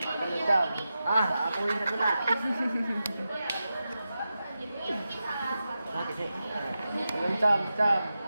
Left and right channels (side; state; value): both; inverted; correlation -0.91